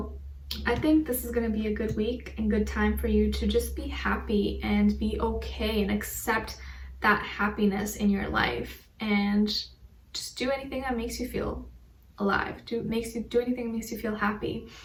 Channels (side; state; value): both; identical; correlation 1.00